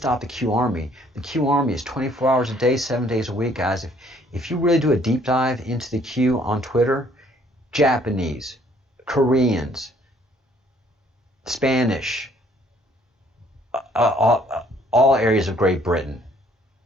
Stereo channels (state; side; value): normal; both; correlation 0.62